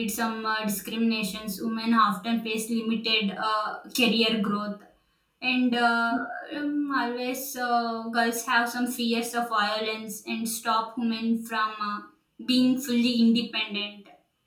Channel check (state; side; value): identical; both; correlation 1.00